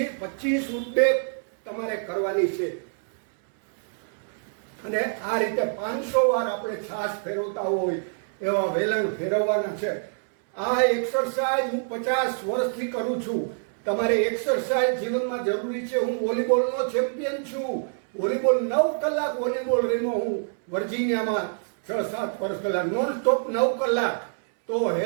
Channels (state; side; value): silent; left; 61 dB below the other